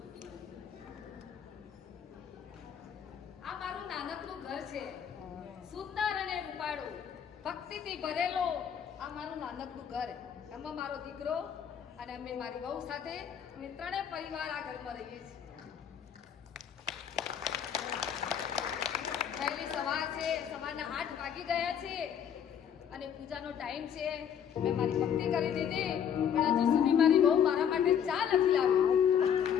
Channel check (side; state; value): right; quieter; 8.5 dB